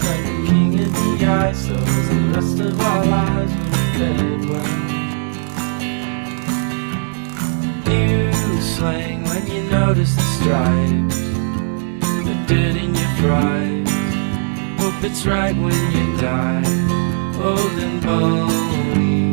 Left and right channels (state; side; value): silent; left; 60 dB below the other